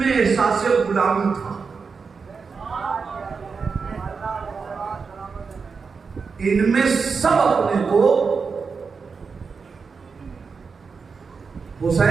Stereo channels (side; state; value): left; quieter; 5.2 dB